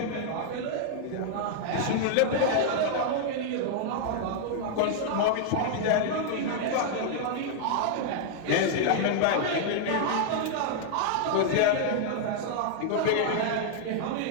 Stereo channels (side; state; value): both; different; correlation -0.01